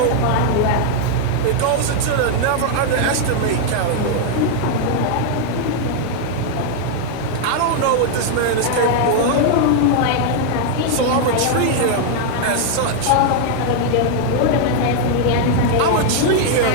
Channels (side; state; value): both; different; correlation 0.00